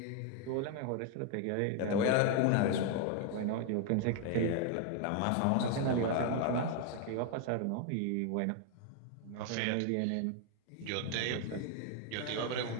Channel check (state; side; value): different; both; correlation 0.01